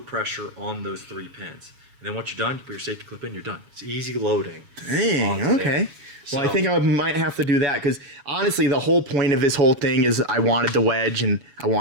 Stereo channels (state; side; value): late; left; 7.1 ms